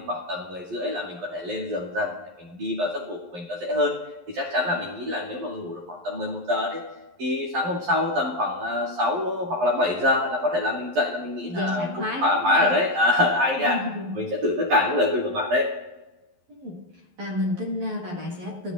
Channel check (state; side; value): late; left; 11 ms